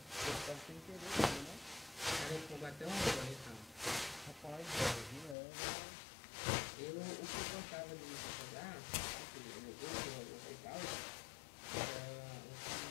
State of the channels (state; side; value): drops out; right; at 5.4 s